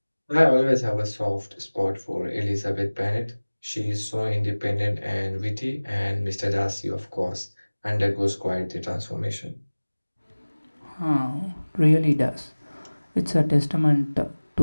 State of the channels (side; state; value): both; inverted; correlation -1.00